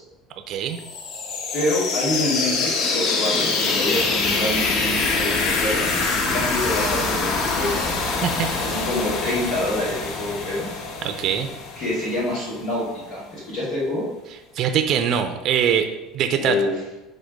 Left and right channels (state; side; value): normal; both; correlation 0.42